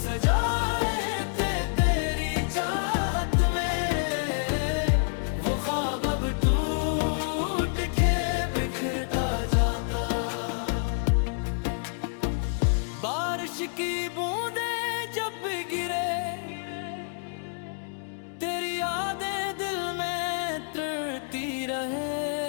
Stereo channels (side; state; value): right; silent; digital silence